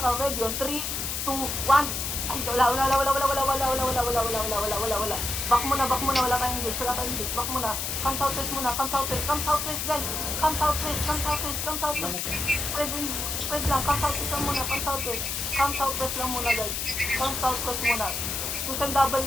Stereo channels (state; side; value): noise; left; hiss, 2 dB below the sound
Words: Ready on 3, 2, 1. Ay, wala. Back muna. Wala tayong engage. Back muna. Come southwest, guys. Come southwest. Spread lang. Come southwest lang muna, guys. Susan doubles